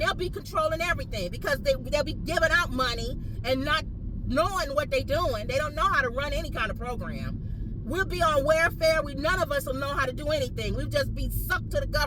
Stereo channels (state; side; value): identical; both; correlation 1.00